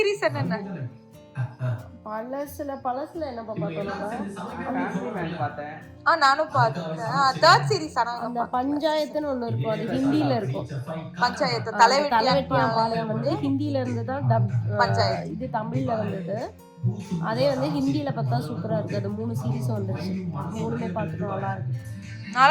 என்னென்ன? பழசுல என்ன பார்த்தோம்? நானும் பார்த்தேன். Third series. ஆனா அந்த பஞ்சாயத்துன்னு ஒண்ணு இருக்கும், அது ஹிந்தில இருக்கும். பஞ்சாயத்து தலைவெட்டியான் பாளையம் வந்து ஹிந்தில இருந்து தான் டப் பஞ்சாயத்து. இது தமிழ்ல வந்தது. அதே வந்து ஹிந்தில பார்த்தா சூப்பரா இருக்கு. அது 3 சீரிஸும் வந்துருச்சு. 3மே பார்த்துட்டு நல்லா இருக்கு.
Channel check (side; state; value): both; identical; correlation 1.00